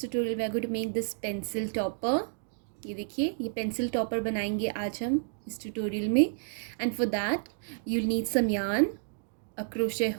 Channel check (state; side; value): silent; left; digital silence